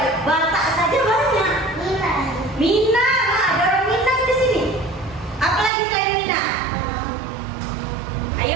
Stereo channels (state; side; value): drops out; left; at 5.7 s